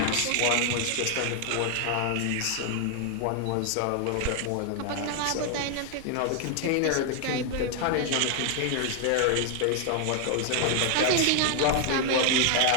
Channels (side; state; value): both; different; correlation 0.00